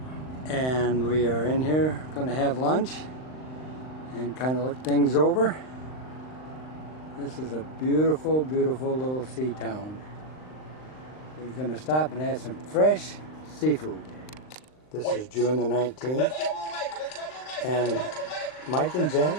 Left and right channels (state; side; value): late; right; 39 ms